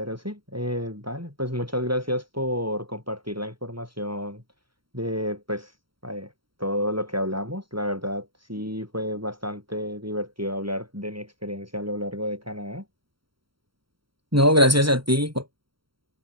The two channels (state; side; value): late; left; 0.74 ms